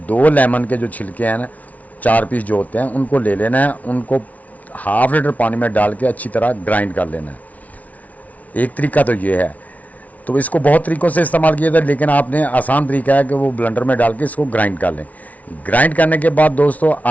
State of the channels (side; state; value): right; late; 0.071 ms